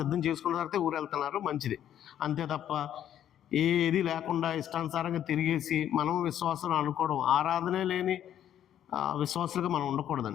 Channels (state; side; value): quieter; right; 10.6 dB